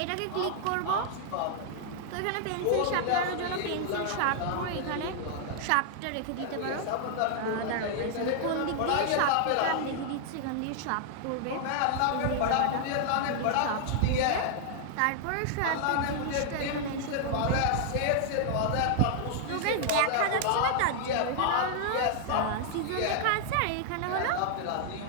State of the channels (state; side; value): different; both; correlation 0.00